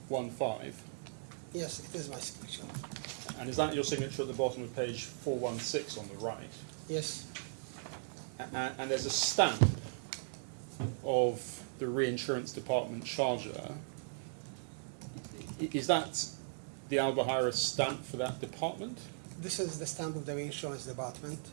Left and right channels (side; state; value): left; silent; digital silence